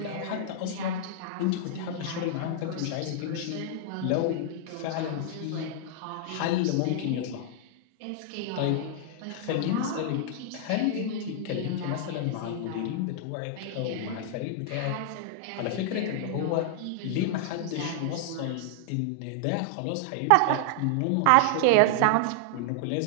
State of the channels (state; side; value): different; both; correlation -0.01